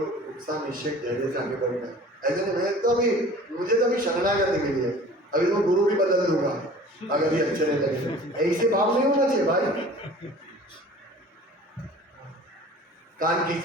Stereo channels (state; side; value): normal; both; correlation 0.45